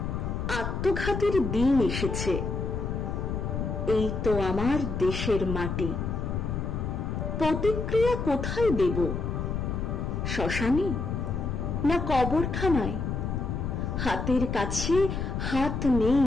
আত্মঘাতীর দিন এসেছে। এই তো আমার দেশের মাটি। প্রতিক্রিয়া কোথায় দেব? শ্মশানে না কবরখানায়? হাতের কাছে হাত নেই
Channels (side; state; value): left; noise; rumble, 2 dB below the sound